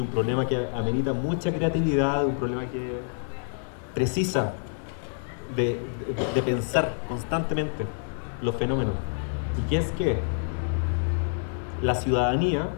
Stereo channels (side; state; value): right; silent; digital silence